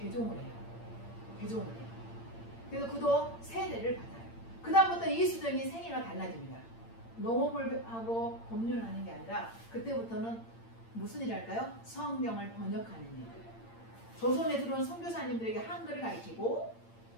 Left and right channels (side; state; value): right; late; 8.8 ms